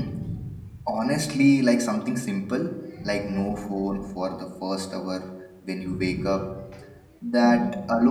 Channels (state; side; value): identical; both; correlation 1.00